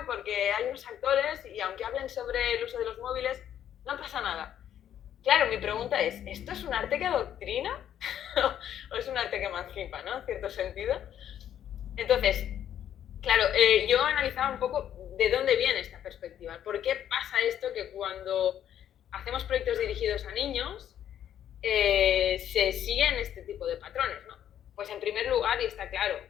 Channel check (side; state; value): right; quieter; 10.3 dB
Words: porque hay unos actores, y aunque hablen sobre el uso de los móviles, no pasa nada. Claro, mi pregunta es, ¿esto es un arte que adoctrina? ¿O es un arte que emancipa, ¿no? En cierto sentido. Entonces, claro, yo analizaba un poco de dónde viene esta perspectiva. ¿Por qué pasa esto que cuando hacemos proyectos dirigidos a niños se siguen este tipo de patrones, ¿no? Pues en primer lugar, y está claro,